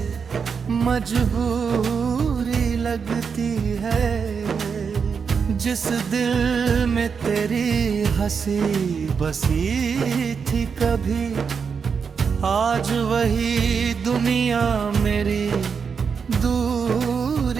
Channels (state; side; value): quieter; left; 6.1 dB